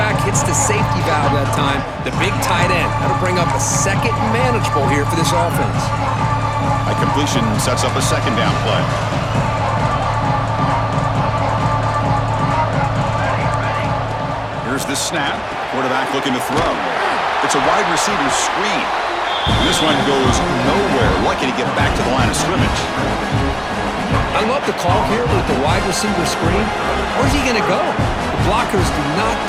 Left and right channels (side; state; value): both; identical; correlation 1.00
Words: hits the safety valve that time. The big tight end. That'll bring up a 2nd and manageable here for this offense. A completion sets up a 2nd down play. Here's the snap. Quarterback looking to throw. It's a wide receiver screen. And this one goes nowhere. Lucky to get back to the line of scrimmage. I love the call here with the wide receiver screen. Where's he going to go? The blockers do not